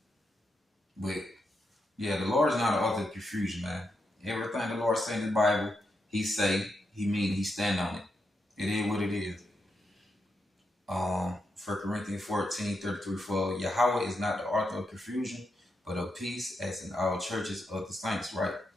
But yeah, the Lord is not an author of confusion, man. Everything the Lord say in the Bible, he say, he mean, he stand on it. It is what it is. 1 Corinthians 14, 33, 4. Yahweh is not the author of confusion, but of peace, as in all churches of the saints, right?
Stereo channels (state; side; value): normal; both; correlation 0.84